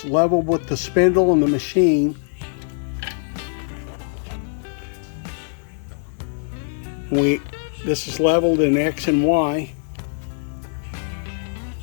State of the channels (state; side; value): silent; right; digital silence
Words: level with the spindle and the machine. This is leveled in X and Y.